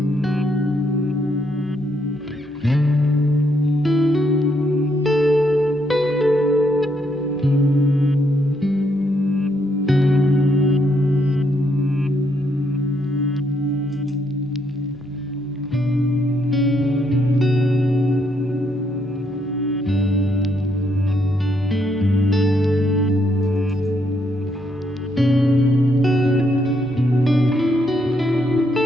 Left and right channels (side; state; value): both; normal; correlation 0.75